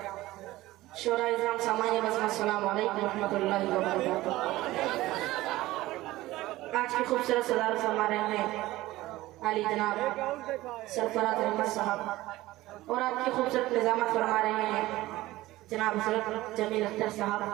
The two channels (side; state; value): left; quieter; 17.5 dB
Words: शोरा इज़ाम सामान्य बज़म, अस्सलामु अलैकुम रहमतुल्लाहि व बरकातुहू। आज की खूबसूरत सदारत फरमा रहे हैं आली जनाब सरफराज अहमद साहब, और आपकी खूबसूरत निज़ामत फरमा रहे हैं जनाब हज़रत जमील अख्तर साहब।